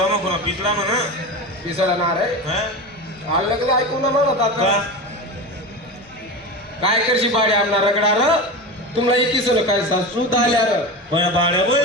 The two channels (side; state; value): both; normal; correlation 0.25